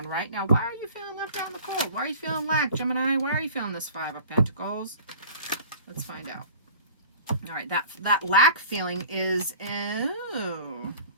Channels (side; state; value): both; inverted; correlation -0.44